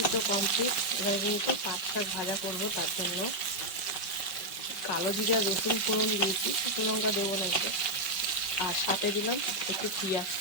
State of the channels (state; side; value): late; right; 5.3 ms